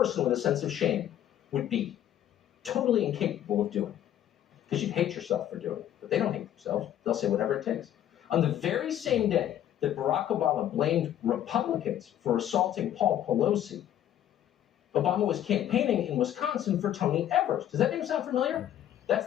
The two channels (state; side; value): quieter; right; 11.3 dB